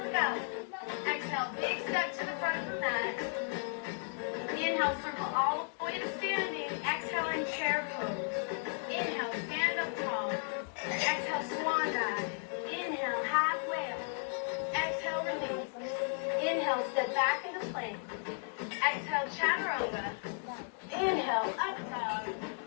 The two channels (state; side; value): silent; right; 55 dB below the other